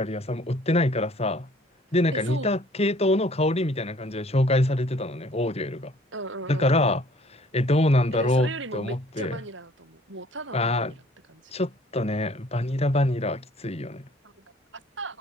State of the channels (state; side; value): normal; both; correlation 0.56